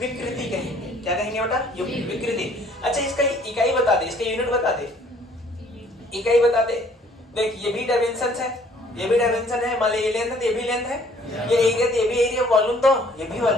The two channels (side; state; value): both; normal; correlation 0.59